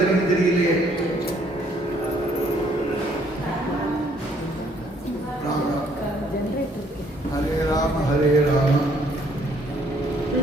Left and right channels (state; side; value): normal; both; correlation 0.64